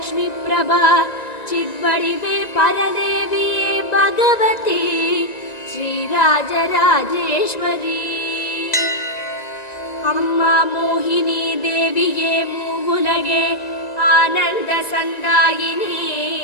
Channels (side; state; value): right; late; 1.9 ms